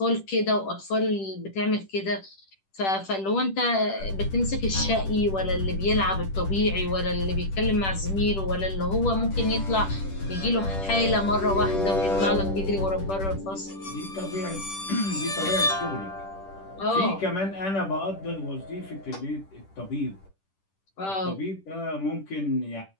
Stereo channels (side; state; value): right; late; 10 ms